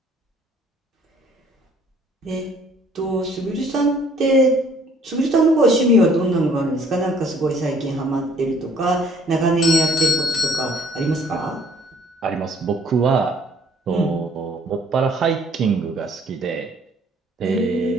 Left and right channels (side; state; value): both; normal; correlation 0.59